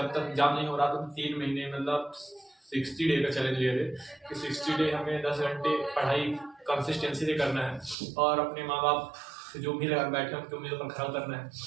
तक एग्जाम नहीं हो रहा तो 3 महीने मतलब 60 डे का चैलेंज लिए थे कि 60 डे हमें 10 घंटे पढ़ाई कंसिस्टेंसी से करना है और अपने माँ बाप जो भी लगा बैठे उनकी उम्मीदों पर खरा उतरना है।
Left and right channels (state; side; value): drops out; left; at 8.0 s